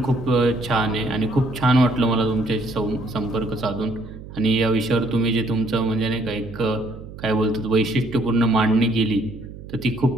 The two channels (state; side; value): noise; right; hum, 14 dB below the sound